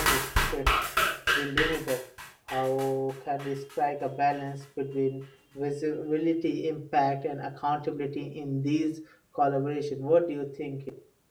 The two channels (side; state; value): both; identical; correlation 1.00